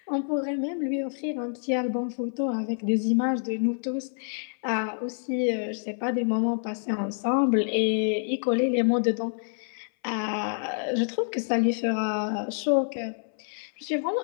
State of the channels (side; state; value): right; silent; 58 dB below the other